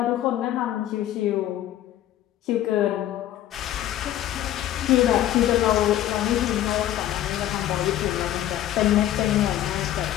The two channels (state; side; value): quieter; right; 12.8 dB